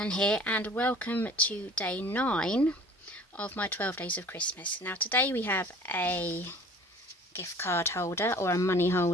here and welcome to day 9 of my 12 days of Christmas. Now today we have a gift card holder or a money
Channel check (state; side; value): normal; both; correlation 0.48